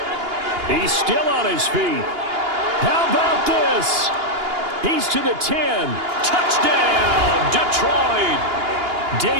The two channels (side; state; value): left; late; 2.8 ms